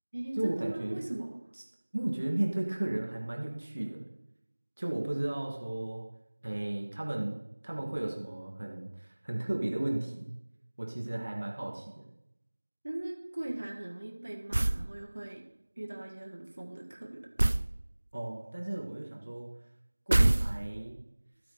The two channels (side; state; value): both; inverted; correlation -1.00